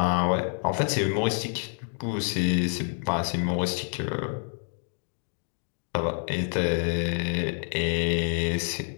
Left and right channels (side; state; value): right; silent; digital silence